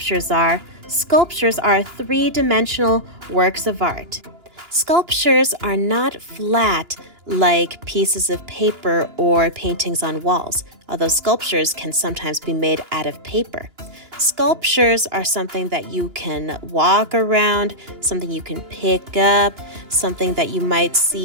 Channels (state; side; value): late; left; 2.9 ms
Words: are three-dimensional works of art. Sculptures are not flat like pieces of paper or paintings on walls, although sculptures can sometimes be made out of paper. Sculptures are something that you can walk around, something you can pick up, something that you might